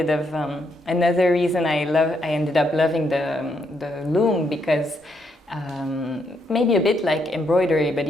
of another reason I ended up loving the loom, because maybe a bit like embroidery, but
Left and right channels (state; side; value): normal; both; correlation 0.77